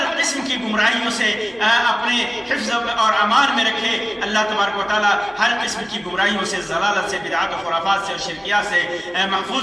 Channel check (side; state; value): both; identical; correlation 1.00